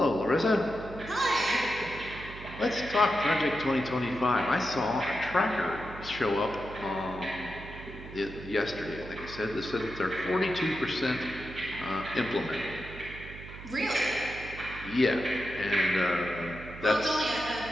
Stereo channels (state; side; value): noise; right; hum, 13 dB below the sound